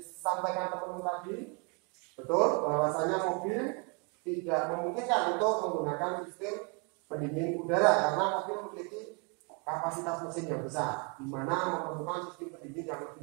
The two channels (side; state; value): left; quieter; 34.3 dB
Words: teman-teman tadi, betul bahwasanya mobil tidak memungkinkan untuk menggunakan sistem pendingin udara karena mobil memiliki kapasitas mesin yang besar, di mana memerlukan sistem pendingin yang